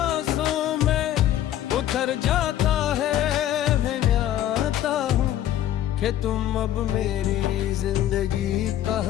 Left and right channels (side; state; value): right; quieter; 12.1 dB